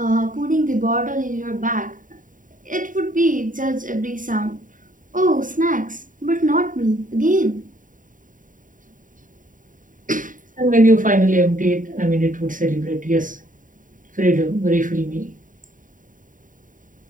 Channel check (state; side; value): late; left; 0.39 ms